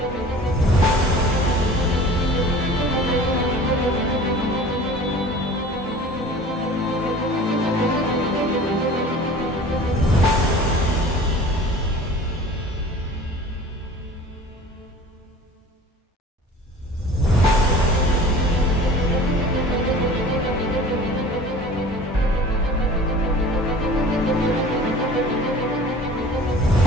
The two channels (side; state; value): both; normal; correlation 0.43